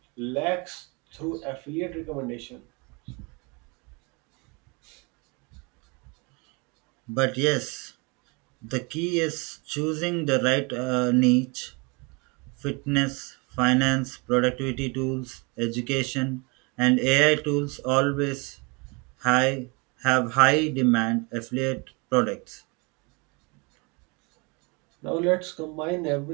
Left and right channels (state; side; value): quieter; left; 29.6 dB